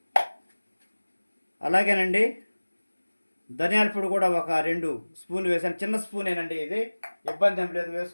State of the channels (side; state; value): both; inverted; correlation -1.00